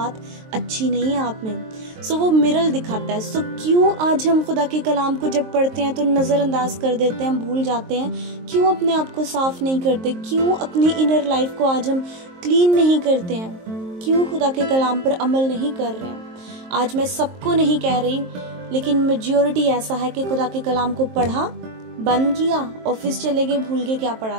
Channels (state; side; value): late; left; 23 ms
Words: अच्छी नहीं है आप में। सो वो मिरर दिखाता है। सो क्यों आज हम खुदा के कलाम को जब पढ़ते हैं तो नज़रअंदाज कर देते हैं, हम भूल जाते हैं? क्यों अपने आप को साफ नहीं करते? क्यों अपनी इनर लाइफ को आज हम क्लीन नहीं करते हैं? क्यों खुदा के कलाम पर अमल नहीं कर रहे हैं? आज मैं सबको नहीं कह रही, लेकिन मेजॉरिटी ऐसा है कि खुदा के कलाम को पढ़ा, बंद किया, ऑफिस चले गए, भूल गए क्या पढ़ा